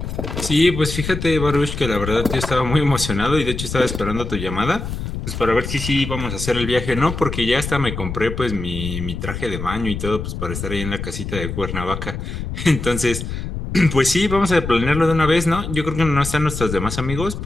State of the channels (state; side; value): noise; left; rumble, 6 dB below the sound